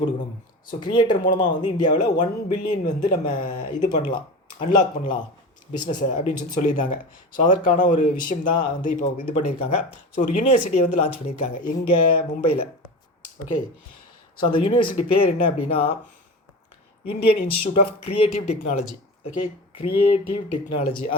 கொடுக்கணும். ஸோ கிரியேட்டர் மூலமாக வந்து இந்தியாவில் 1 பில்லியன் வந்து நம்ம இது பண்ணலாம், அன்லாக் பண்ணலாம் பிஸ்னஸை அப்படின்னு சொல்லியிருந்தாங்க. ஸோ அதற்கான ஒரு விஷயம் தான் வந்து இப்போ இது பண்ணியிருக்காங்க. ஸோ ஒரு யூனிவர்சிட்டியை வந்து லான்ச் பண்ணியிருக்காங்க எங்கே? மும்பையில். ஓகே, ஸோ அந்த யூனிவர்சிட்டி பேர் என்ன அப்படின்னா Indian institute of creative technology. Okay, creative technology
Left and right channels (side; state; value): both; normal; correlation 0.29